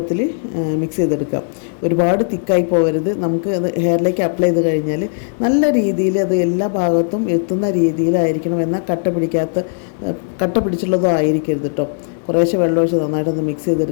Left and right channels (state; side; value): silent; right; 68 dB below the other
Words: മിക്സ് ചെയ്തെടുക്കാം. ഒരുപാട് തിക്കായി പോകരുത്. നമുക്ക് അത് ഹെയറിലേക്ക് അപ്ലൈ ചെയ്ത് കഴിഞ്ഞാൽ നല്ല രീതിയിൽ അത് എല്ലാ ഭാഗത്തും എത്തുന്ന രീതിയിലായിരിക്കണം. എന്നാൽ കട്ട പിടിച്ചുള്ളതോ ആയിരിക്കരുത് കേട്ടോ. കുറേശ്ശെ വെള്ളം ഒഴിച്ച് നന്നായിട്ടൊന്ന് മിക്സ്